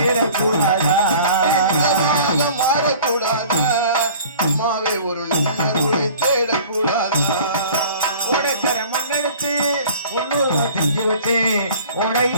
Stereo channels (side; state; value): both; inverted; correlation -0.46